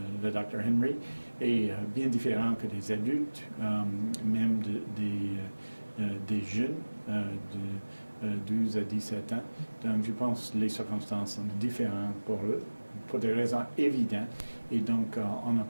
Dr. Henry, est bien différente que des adultes, même des jeunes de 12 à 17 ans. Donc, je pense que les circonstances sont différentes pour eux, pour des raisons évidentes. Et donc, on ne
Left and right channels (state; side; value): inverted; both; correlation -1.00